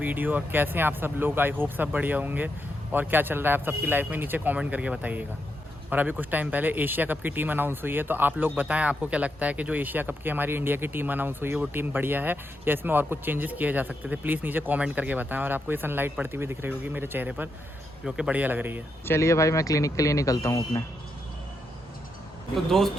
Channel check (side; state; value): both; normal; correlation 0.83